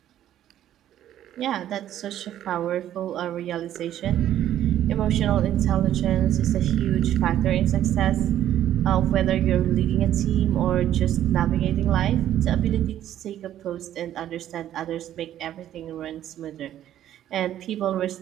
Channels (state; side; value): quieter; left; 11.7 dB